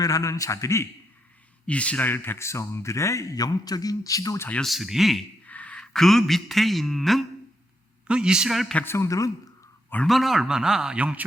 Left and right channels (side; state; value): both; normal; correlation 0.80